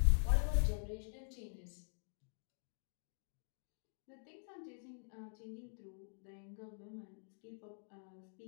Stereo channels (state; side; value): silent; right; digital silence